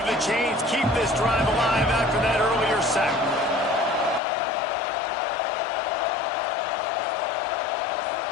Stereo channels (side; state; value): right; drops out; at 4.2 s